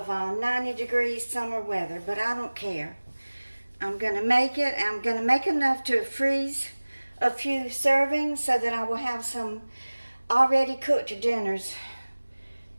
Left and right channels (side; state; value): both; inverted; correlation -1.00